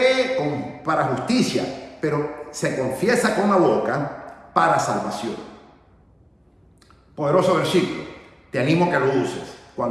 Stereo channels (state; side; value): identical; both; correlation 1.00